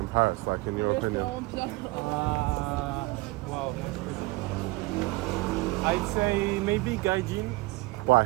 Paris, like in your opinion? Wow. I'd say maybe Gaijin.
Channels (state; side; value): quieter; left; 21.9 dB